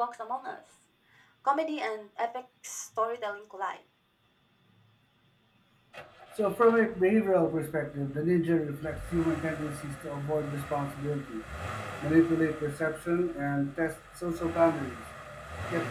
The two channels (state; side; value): identical; both; correlation 1.00